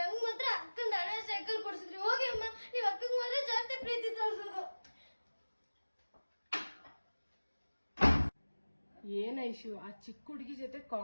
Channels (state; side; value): inverted; both; correlation -1.00